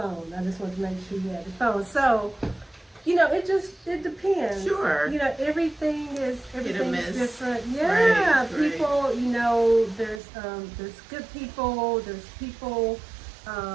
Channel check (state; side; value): drops out; left; at 10.2 s